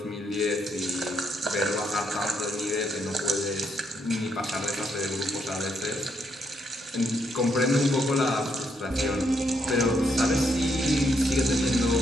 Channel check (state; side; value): normal; both; correlation 0.76